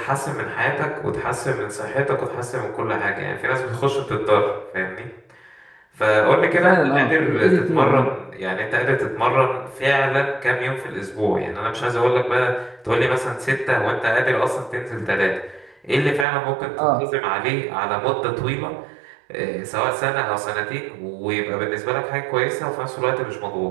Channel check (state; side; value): drops out; left; at 16.2 s